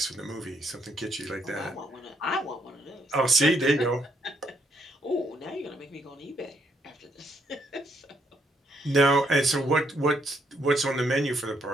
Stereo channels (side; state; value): both; normal; correlation 0.73